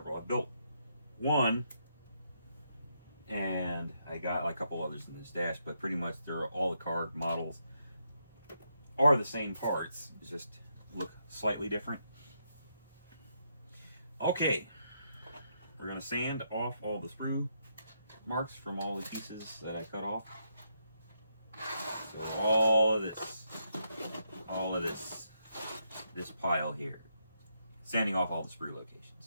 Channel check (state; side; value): inverted; both; correlation -0.79